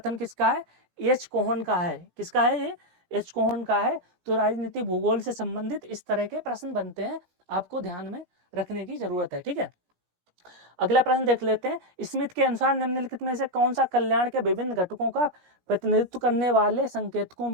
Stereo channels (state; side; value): late; left; 17 ms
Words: किसका है? एच कोहन का है। किसका है ये? एच कोहन का है। तो राजनीतिक भूगोल से संबंधित इस तरह के प्रश्न बनते हैं, आपको ध्यान में रखने की जरूरत है। ठीक है, अगला प्रश्न देख लेते हैं। स्मिथ के अनुसार निम्नलिखित में से कौन सा कल्याण के विभिन्न घटकों का प्रतिनिधित्व करने वाले संकेतकों